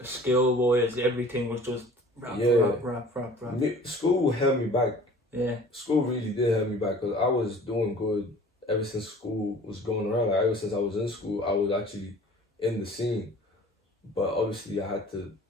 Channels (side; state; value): both; normal; correlation 0.47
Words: skill was, everything was just rap. School held me back. Yeah. School really did help me back, because I was doing good ever since school was going around. Like, ever since I was in school, I was actually in the scene. But obviously, I had to